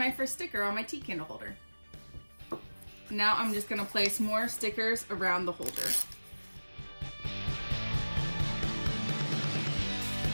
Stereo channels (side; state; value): both; inverted; correlation -1.00